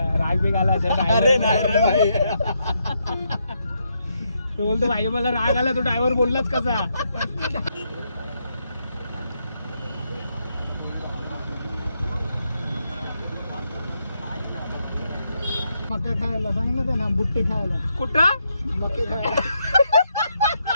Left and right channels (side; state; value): both; inverted; correlation -0.79